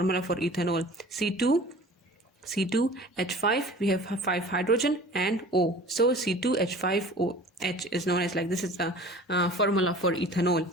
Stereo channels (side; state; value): both; normal; correlation 0.43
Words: for ethanol: C2H5, we have 5 hydrogen and O. So C2H5OH is known as, like this is the formula for ethanol.